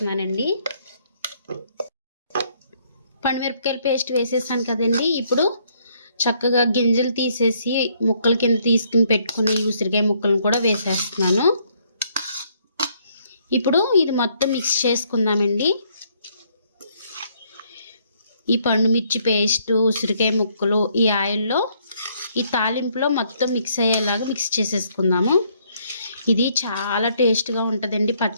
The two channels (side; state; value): both; inverted; correlation -0.68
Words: పండుమిరపకాయల పేస్ట్ వేసేసాను కదండి. ఇప్పుడు చక్కగా గింజలు తీసేసి ముక్కల కింద తీసుకుని పెట్టుకుని ఈ ఉసిరికాయ ముక్కలను కూడా వేసేస్తున్నాను. ఇప్పుడు ఇది మొత్తం మిక్స్ చేసుకుందామండి. ఈ పండుమిర్చి పేస్ట్, ఉసిరికాయ ముక్కలు ఈ ఆయిల్లో, ఈ తాలింపులో మొత్తం మిక్స్ అయ్యేలాగా మిక్స్ చేసేసుకుందాము. ఇది చాలా టేస్ట్గా ఉంటుందండి